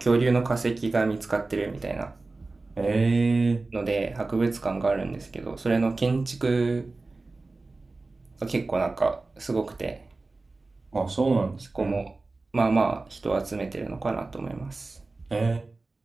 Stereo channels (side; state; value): left; quieter; 3.4 dB